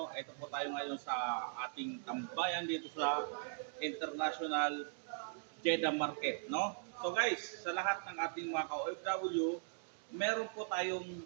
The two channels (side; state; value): left; silent; digital silence